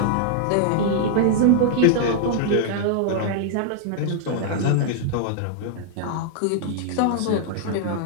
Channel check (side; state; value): both; different; correlation -0.01